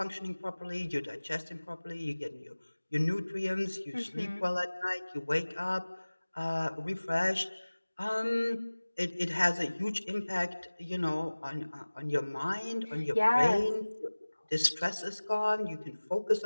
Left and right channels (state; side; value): inverted; both; correlation -1.00